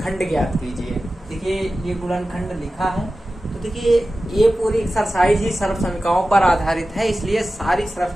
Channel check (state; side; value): normal; both; correlation 0.94